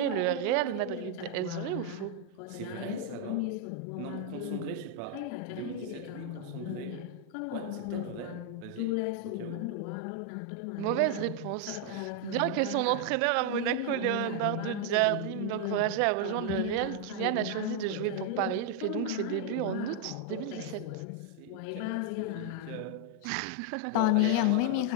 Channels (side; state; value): both; different; correlation 0.00